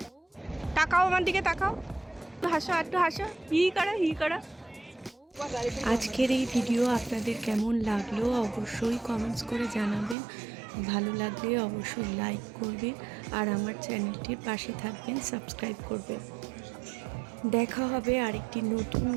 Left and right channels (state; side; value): drops out; left; at 10.2 s